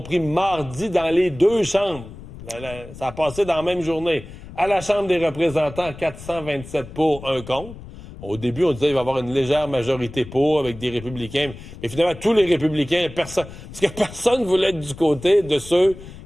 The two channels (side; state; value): left; noise; rumble, 15 dB below the sound